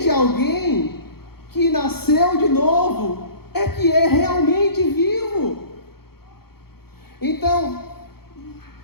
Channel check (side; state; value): right; late; 0.95 ms